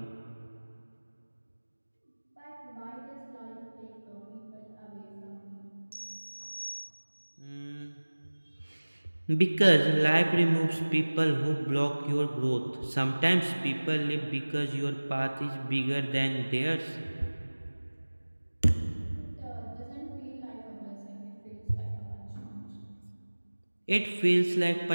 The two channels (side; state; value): both; inverted; correlation -1.00